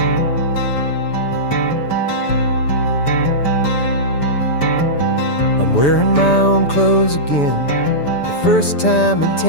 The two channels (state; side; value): late; right; 6.9 ms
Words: I'm wearing my own clothes again, the first time in